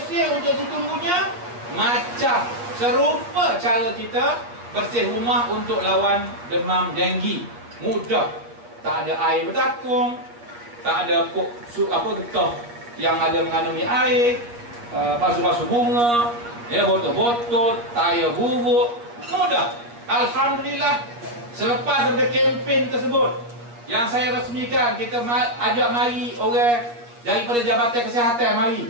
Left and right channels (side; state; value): left; late; 8.4 ms